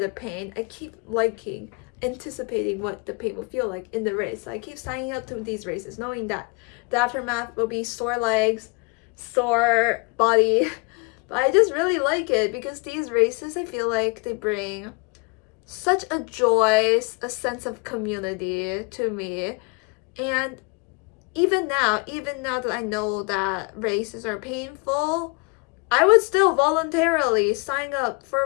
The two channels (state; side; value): quieter; right; 30.5 dB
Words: pain. I keep liking, anticipating what the pain will feel like in the race. So I keep signing up to these races knowing that the aftermath will be sore legs, sore body. But I just really like it because these races, I feel like they bring such a joy, a sense of community to me. And even now that I know that races are painful, I would still voluntarily sign up for